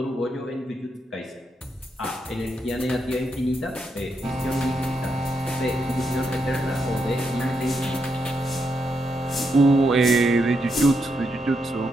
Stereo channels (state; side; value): normal; both; correlation 0.81